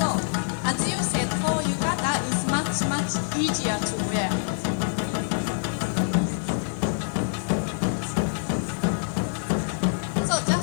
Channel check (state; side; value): silent; right; 61 dB below the other